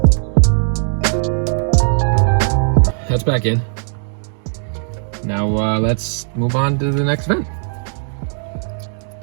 That's back in. Now let's move on to the next vent.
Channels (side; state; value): left; silent; digital silence